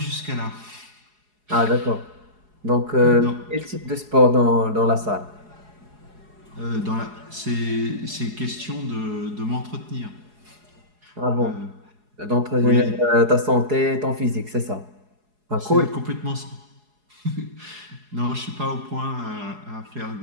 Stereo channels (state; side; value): late; left; 4.8 ms